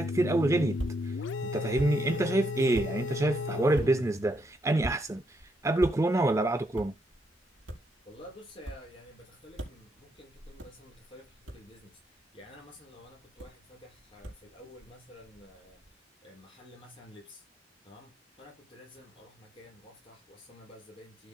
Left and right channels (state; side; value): normal; both; correlation 0.76